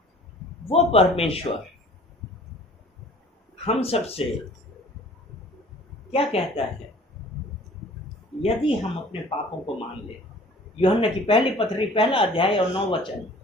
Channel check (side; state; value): both; normal; correlation 0.49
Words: वो परमेश्वर हम सबसे क्या कहता है? यदि हम अपने पापों को मान ले, यूहन्ना की पहली पत्री 1 अध्याय और 9 वचन,